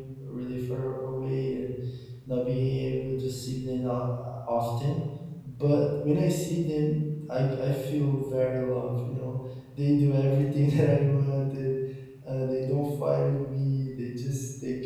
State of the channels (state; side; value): identical; both; correlation 1.00